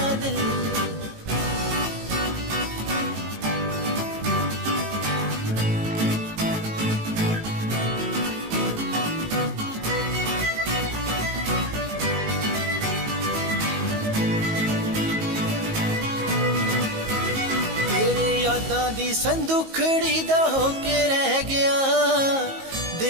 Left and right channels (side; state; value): left; late; 19 ms